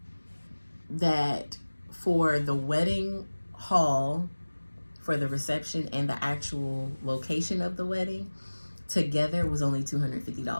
that for the wedding hall, for the reception, and the actual location of the wedding together was only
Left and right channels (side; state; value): both; inverted; correlation -1.00